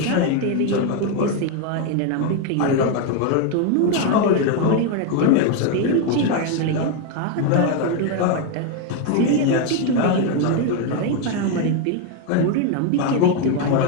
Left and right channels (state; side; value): different; both; correlation 0.01